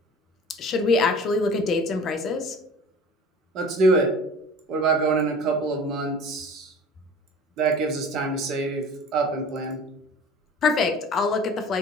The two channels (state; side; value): normal; both; correlation 0.42